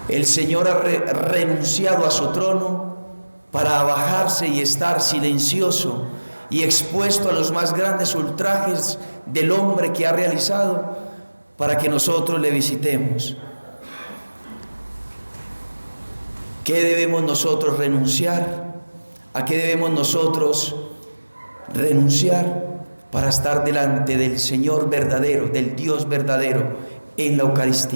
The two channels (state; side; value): inverted; both; correlation -1.00